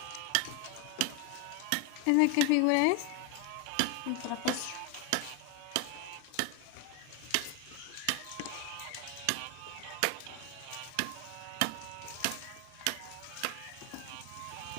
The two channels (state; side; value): different; both; correlation 0.01